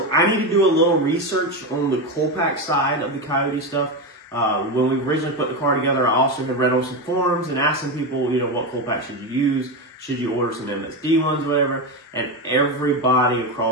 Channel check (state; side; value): normal; both; correlation 0.14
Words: I need to do a little research on the coal pack side of the Coyote stuff. When we originally put the car together, I also had read on some forums and asked some people, what coal pack should you use? Should you order some MSD ones, whatever? And everybody